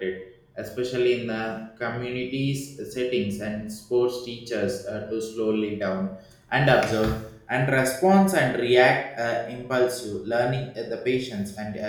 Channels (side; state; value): both; identical; correlation 1.00